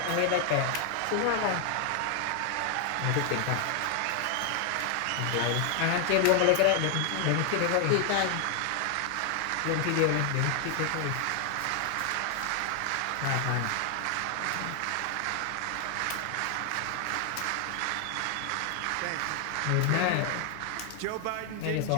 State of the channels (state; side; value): different; both; correlation 0.00